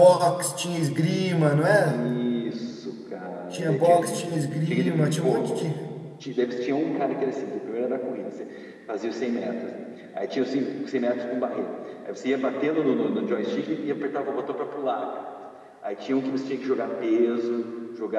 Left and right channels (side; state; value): both; identical; correlation 1.00